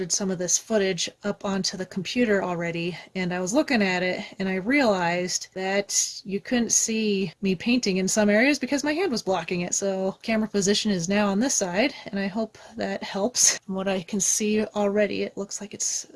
some of this footage up onto the computer already, and I was looking at it and I realized that you couldn't see me painting in some areas because my hand was blocking it. So camera position is now on this side, and I hope that helps. From what I can see already, it looks like it's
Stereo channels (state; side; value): identical; both; correlation 1.00